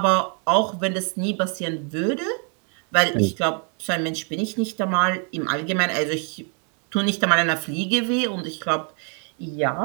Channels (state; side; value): quieter; left; 39.5 dB